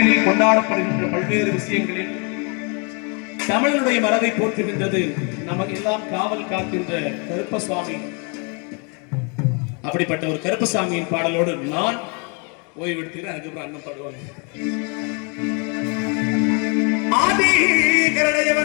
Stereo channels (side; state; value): right; quieter; 34.8 dB